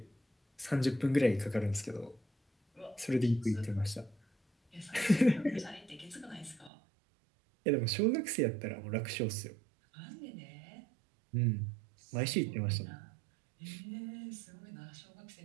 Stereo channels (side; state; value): left; drops out; at 6.7 s